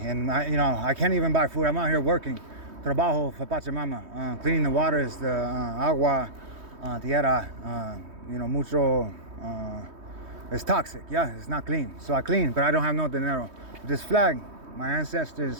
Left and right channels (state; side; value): late; left; 3.2 ms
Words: and I can't even buy food. I'm out here working, trabajo for Pachamama, cleaning the waters, the agua, tierra. Mucho. It's toxic. Yeah, it's not clean. So I clean, but I don't have no dinero. This flag, my